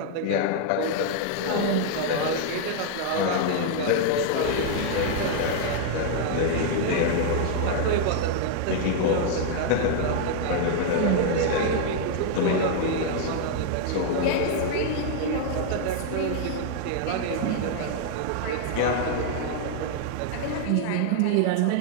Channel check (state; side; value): different; both; correlation 0.00